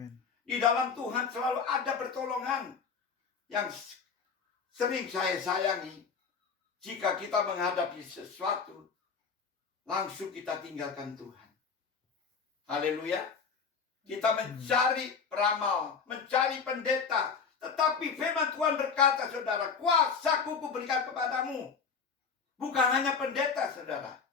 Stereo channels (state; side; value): quieter; right; 5.7 dB